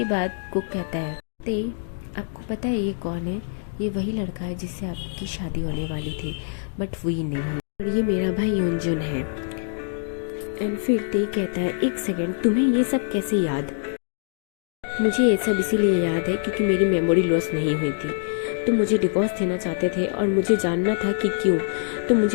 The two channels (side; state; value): right; silent; digital silence